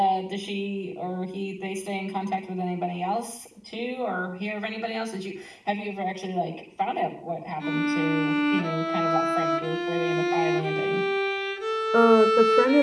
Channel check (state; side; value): identical; both; correlation 1.00